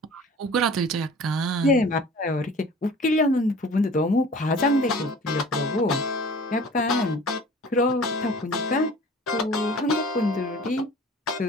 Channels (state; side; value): normal; both; correlation 0.45